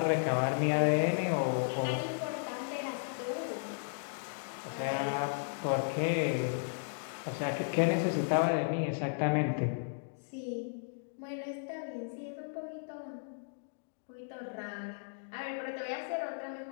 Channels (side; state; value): right; silent; digital silence